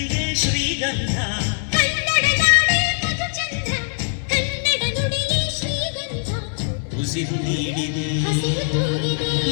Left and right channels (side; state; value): right; silent; digital silence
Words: ಶ್ರೀಗಂಧ. ಕನ್ನಡ ನಾಡೆ ಮಧುಚಂದ್ರ, ಕನ್ನಡ ನುಡಿಗೆ ಶ್ರೀಗಂಧ. ಉಸಿರು ನೀಡಿದೆ, ಹಸಿರು ತೂಗಿದೆ,